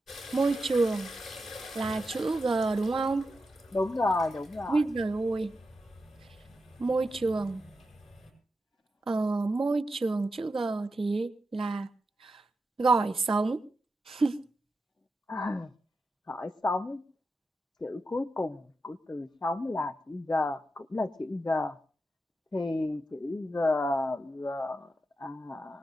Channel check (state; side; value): normal; both; correlation 0.88